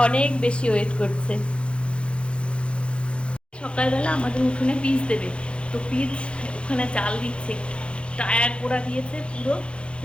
অনেক বেশি ওয়েট করছে। সকালবেলা আমাদের উঠোনে পিচ দেবে, তো পিচ ওখানে জাল দিচ্ছে, টায়ার পোড়া দিয়েছে, পুরো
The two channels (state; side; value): late; right; 0.057 ms